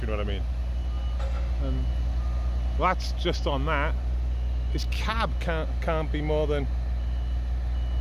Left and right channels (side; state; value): both; identical; correlation 1.00